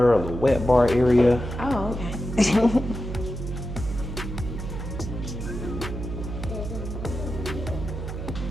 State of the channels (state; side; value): noise; right; hum, 7 dB below the sound